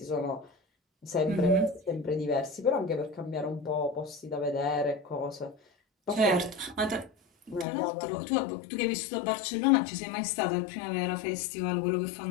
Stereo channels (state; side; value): drops out; right; at 7.7 s